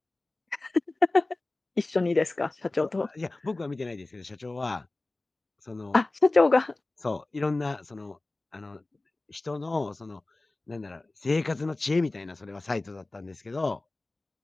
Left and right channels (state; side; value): quieter; right; 3.0 dB